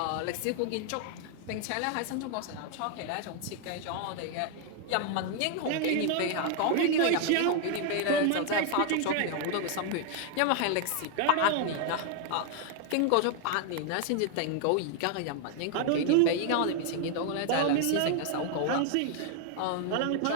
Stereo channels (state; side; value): different; both; correlation 0.00